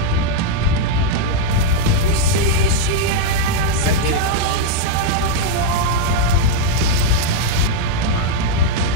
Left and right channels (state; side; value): different; both; correlation 0.00